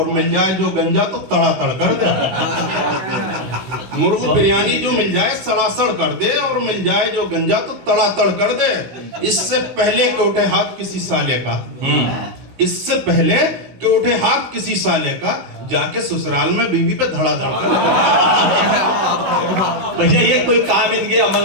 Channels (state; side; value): late; left; 16 ms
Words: मिल जाए जो गंजा तो तड़ातड़ कर दे। मुर्ग बिरयानी जो मिल जाए सड़ासड़ कर दे, और मिल जाए जो गंजा तो तड़ातड़ कर दे। इससे पहले कि उठे हाथ किसी साले का, इससे पहले कि उठे हाथ किसी साले का, जाके ससुराल में बीवी पे धड़ाधड़ कर दे। भैया ये कोई काम इनके